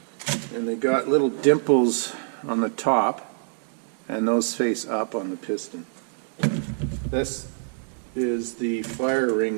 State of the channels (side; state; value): left; silent; digital silence